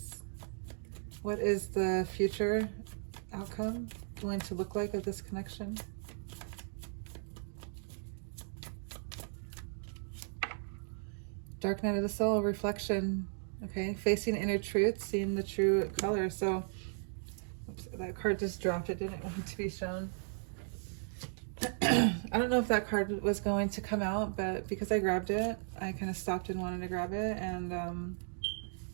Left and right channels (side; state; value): left; silent; digital silence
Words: What is the future outcome going to look like of this connection? Dark night of the soul, reflection. Okay, facing inner truth, seeing the true color. So, oops, that card just dropped. It didn't want to be shown. I don't know if that card was going to come out, but because I grabbed it, I kind of stopped and wanted to grab it. And